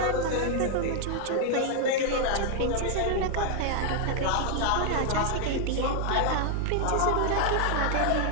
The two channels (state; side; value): different; both; correlation 0.00